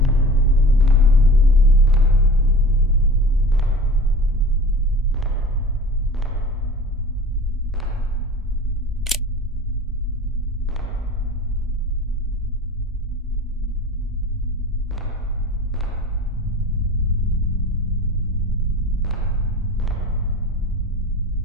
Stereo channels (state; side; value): normal; both; correlation 0.38